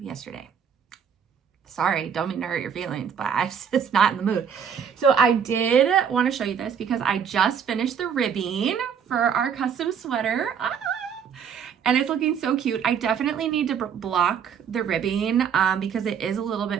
Sorry, don't mean to hurt your feelings, but I was just not in the mood. So I did want to show you this because I just finished the ribbing for our custom sweater. And it's looking so cute. I definitely need to block the ribbing because it is a little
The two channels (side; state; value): left; quieter; 7.5 dB